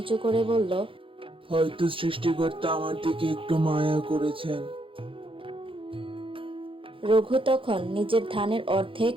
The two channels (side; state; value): left; late; 0.25 ms